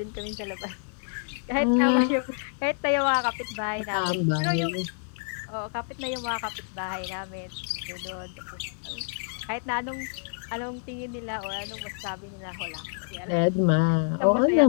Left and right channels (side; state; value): right; silent; 60 dB below the other